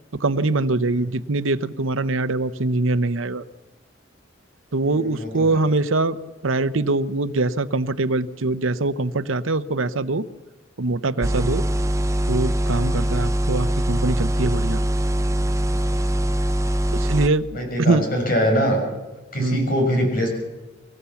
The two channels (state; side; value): normal; both; correlation 0.49